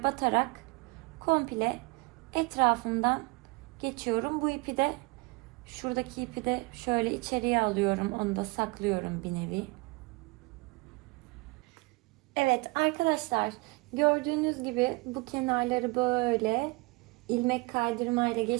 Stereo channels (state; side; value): quieter; left; 26.5 dB